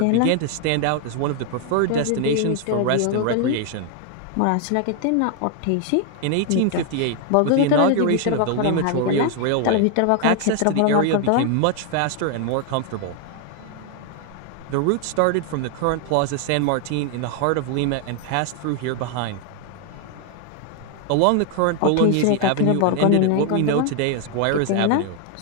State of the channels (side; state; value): both; different; correlation 0.01